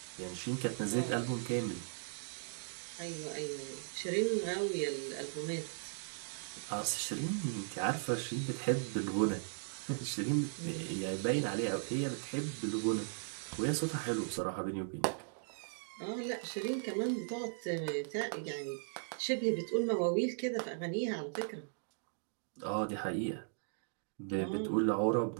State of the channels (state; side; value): silent; left; digital silence